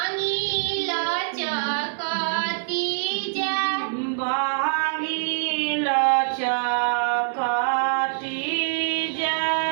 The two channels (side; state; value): left; silent; 59 dB below the other